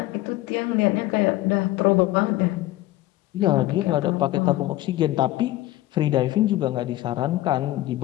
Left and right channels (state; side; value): quieter; right; 16.5 dB